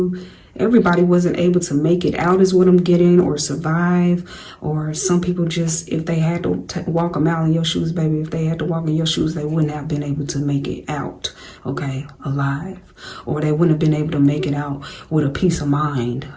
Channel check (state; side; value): identical; both; correlation 1.00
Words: Everybody wasn't able to make it out is what I'm getting, or survive. Or some people just, if they had to walk a mile in your shoes, baby, if they had to walk in your shoes, they wouldn't have been able to make it out, okay, alive. Or they wouldn't have been able to make it out with a peace of mind,